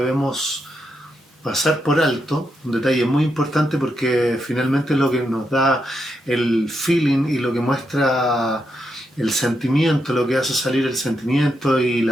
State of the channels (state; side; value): normal; both; correlation 0.82